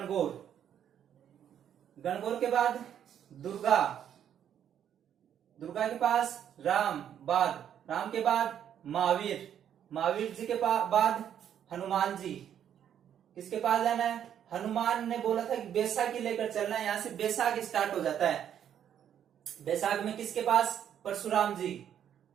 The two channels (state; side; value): quieter; left; 9.5 dB